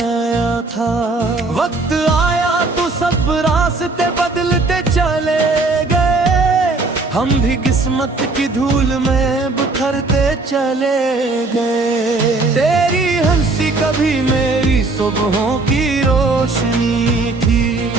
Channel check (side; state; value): left; quieter; 3.4 dB